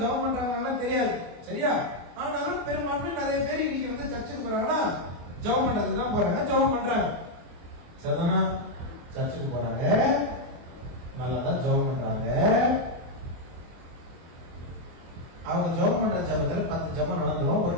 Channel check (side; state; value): left; late; 24 ms